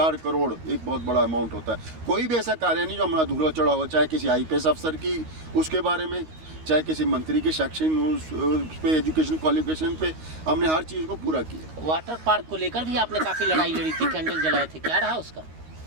करोड़ एक बहुत बड़ा अमाउंट होता है। कोई भी ऐसा कार्य नहीं जो हमारा अधूरा चढ़ा हो, चाहे किसी IPS अफसर की उसके बारे में, चाहे किसी मंत्री के शैक्षणिक उस पे, एजुकेशन क्वालिफिकेशन पे, हमने हर चीज़ को पूरा किया। वाटर पार्क को लेकर भी आपने काफ़ी लड़ाई लड़ी थी, कैंडल जलाए थे, क्या रहा उसका?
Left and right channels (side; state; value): left; late; 13 ms